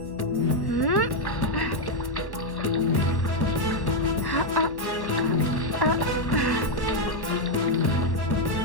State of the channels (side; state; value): right; late; 1.1 ms